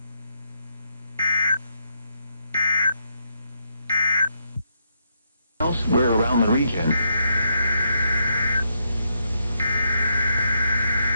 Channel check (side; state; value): both; inverted; correlation -0.77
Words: Elsewhere around the region.